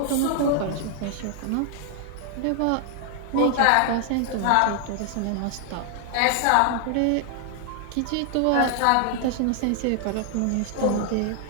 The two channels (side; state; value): both; different; correlation 0.00